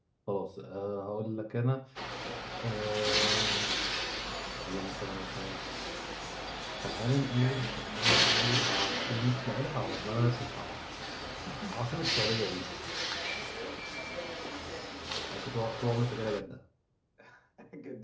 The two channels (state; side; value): identical; both; correlation 1.00